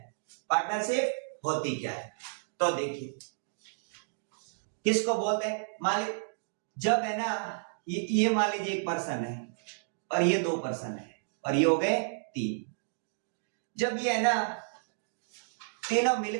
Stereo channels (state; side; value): silent; left; digital silence